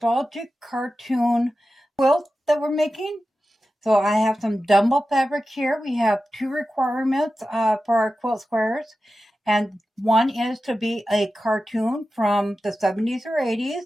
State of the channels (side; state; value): both; normal; correlation 0.93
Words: cartoon quilt that we're making. So I have some Dumbo fabric here. We have two requirements for our quilt squares. And one is to be a cartoon from the 70s or 80s.